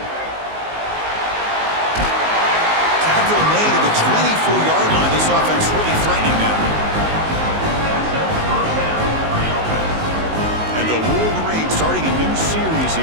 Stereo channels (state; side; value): late; left; 19 ms